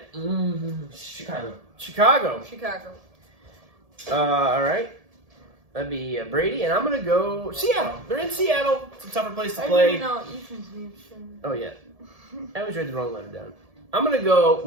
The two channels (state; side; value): late; left; 1.7 ms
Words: Chicago. All right. That'd be Brady, and I'm going to go Seattle. They're in Seattle. It's a tougher place to I play. didn't know Ethan's name. Oh, yeah. I always read the wrong letter down. I'm going to go